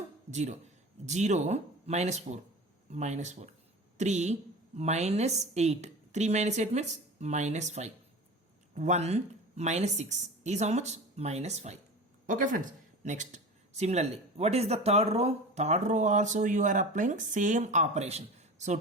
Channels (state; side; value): normal; both; correlation 0.34